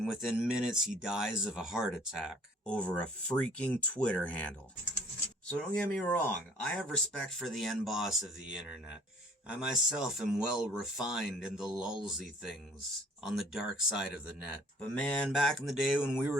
within minutes he dies of a heart attack over a freaking Twitter handle. So don't get me wrong, I have respect for the end boss of the internet. I myself am well refined in the lulzy things on the dark side of the net. But man, back in the day when we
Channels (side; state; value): both; normal; correlation 0.56